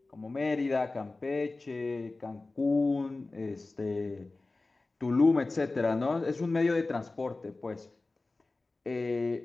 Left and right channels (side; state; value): right; quieter; 3.3 dB